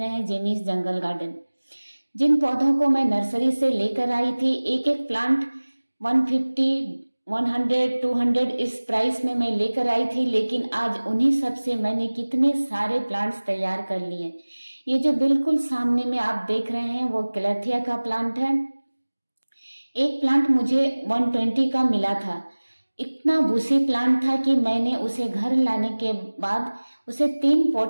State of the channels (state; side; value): inverted; both; correlation -1.00